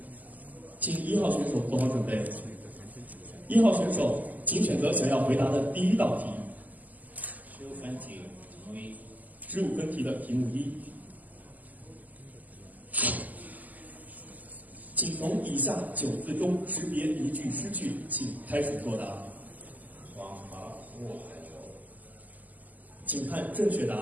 请1号选手做好准备。1号选手，请选择想要回答的第1道题。15分题题目1。15分题的题目1。请从以下9字中识别一句诗句，请开始作答。黄河入海流。请看正确答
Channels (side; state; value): left; late; 0.080 ms